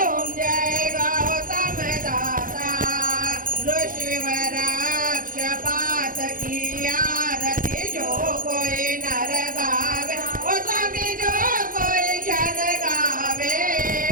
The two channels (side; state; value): left; late; 0.40 ms